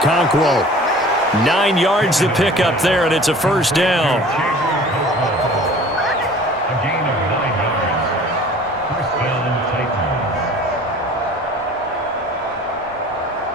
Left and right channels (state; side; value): normal; both; correlation 0.46